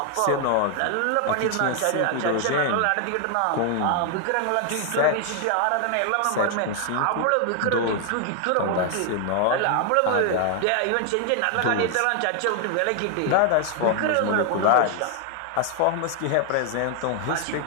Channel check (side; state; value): both; different; correlation 0.00